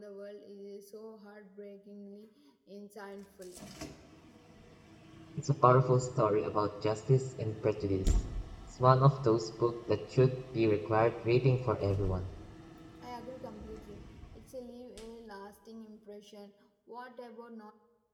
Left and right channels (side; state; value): both; identical; correlation 1.00